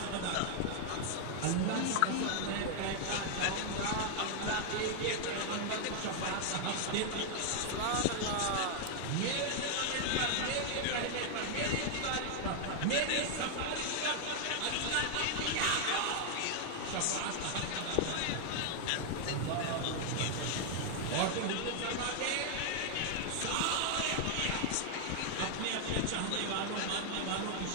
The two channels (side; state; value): both; different; correlation 0.00